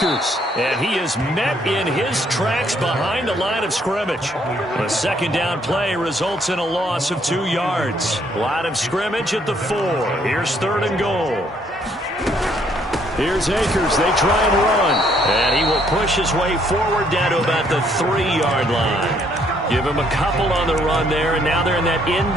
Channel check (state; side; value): normal; both; correlation 0.67